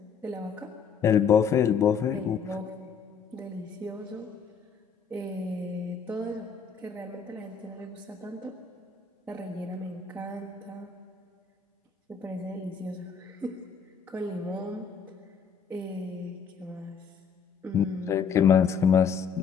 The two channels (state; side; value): quieter; right; 6.5 dB